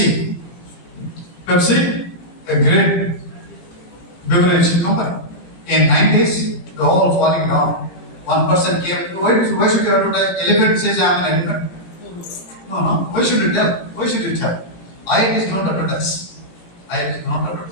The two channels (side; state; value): right; late; 18 ms